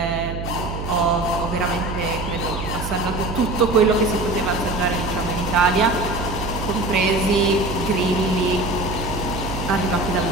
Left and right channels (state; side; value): noise; right; hum, 6 dB below the sound